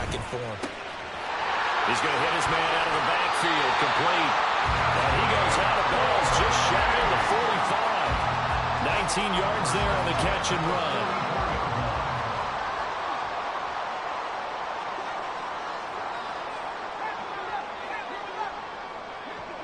in form. He's going to hit his man out of the backfield, complete. And he goes out of bounds just shy of the 45. 19 yards there on the catch and run.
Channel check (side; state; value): both; identical; correlation 1.00